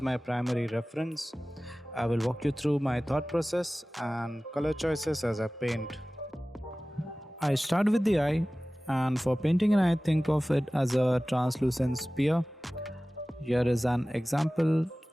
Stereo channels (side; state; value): both; normal; correlation 0.98